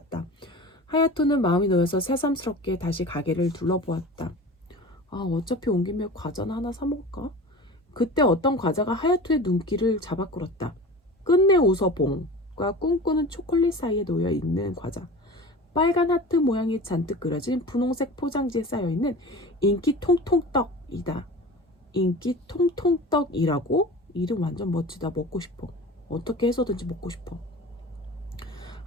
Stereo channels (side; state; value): both; normal; correlation 0.36